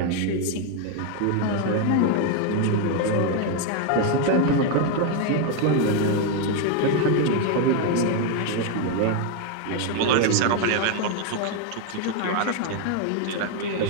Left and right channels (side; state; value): both; different; correlation 0.01